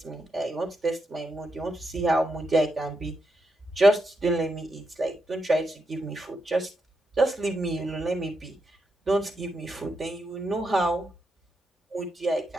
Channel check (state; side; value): normal; both; correlation 0.83